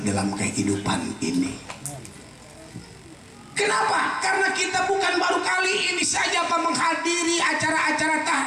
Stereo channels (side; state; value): both; identical; correlation 1.00